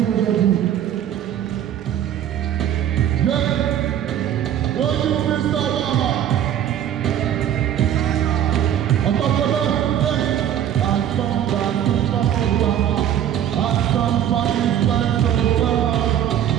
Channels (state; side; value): quieter; left; 10.4 dB